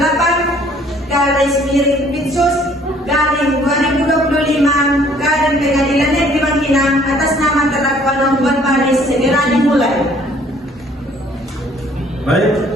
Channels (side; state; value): both; normal; correlation 0.59